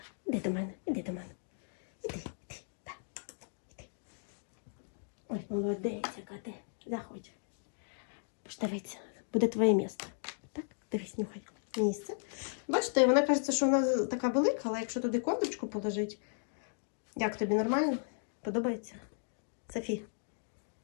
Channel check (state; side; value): silent; right; digital silence